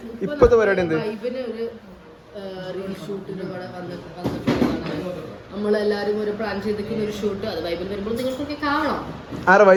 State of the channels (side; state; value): both; identical; correlation 1.00